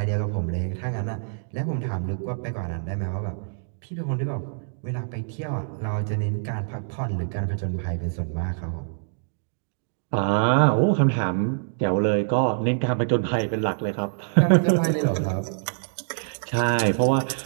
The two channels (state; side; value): silent; left; digital silence